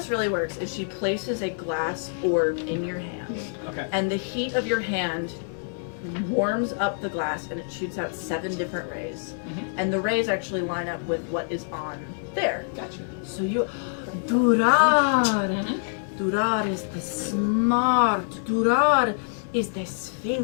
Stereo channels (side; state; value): right; silent; digital silence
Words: really works is she places a glass orb in your hand, Okay. and the heat of your hand warms up the glass, and it shoots out 7 different rays. And the rays actually line up with what is on there. Gotcha. So you, Durar. Durar is the smart. Durar is the